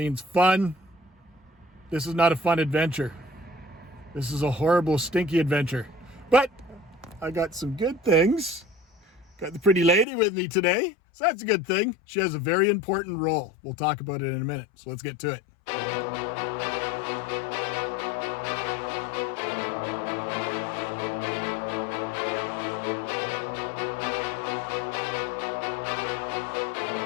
fun. This is not a fun adventure. This is a horrible, stinky adventure. But I got some good things. Got the pretty lady with me today, so that's a good thing. She has a very important role. We'll talk about it in a minute, so let's get to it.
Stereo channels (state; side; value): drops out; right; at 10.1 s